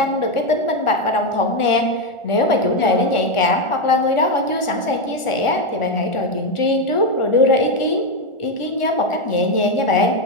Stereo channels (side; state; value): right; late; 1.4 ms